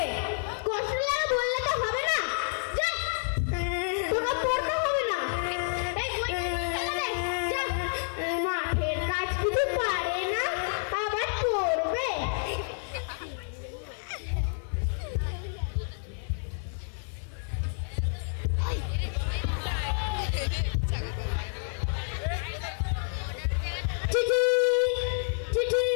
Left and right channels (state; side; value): silent; right; 58 dB below the other